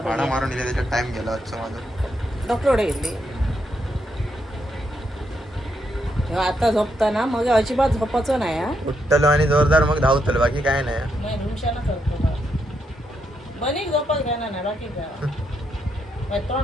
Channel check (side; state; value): both; normal; correlation 0.79